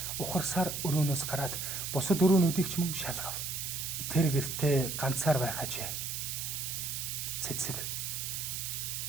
ухарсаар өрөөнөөс гараад бусад өрөөнүүдийг ч мөн шалгав. Тэр гэртээ ганцаар байх ажээ. Цэцэг.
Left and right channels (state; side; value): noise; right; hiss, 3 dB below the sound